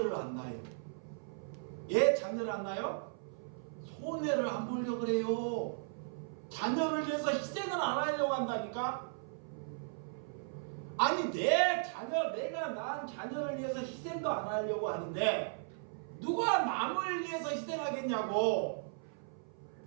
안 낳아요. 예, 자녀를 안 낳아요? 손해를 안 보려고 그래요. 자녀를 위해서 희생을 안 하려고 한다니까? 아니 내 자녀, 내가 낳은 자녀를 위해서 희생도 안 하려고 하는데 누가 남을 위해서 희생하겠냐고.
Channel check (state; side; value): silent; left; 53 dB below the other